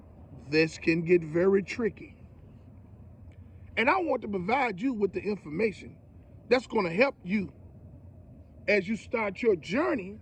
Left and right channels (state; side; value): identical; both; correlation 1.00